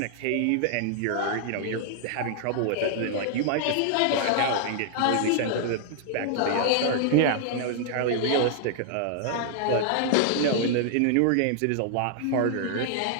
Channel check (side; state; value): both; different; correlation -0.01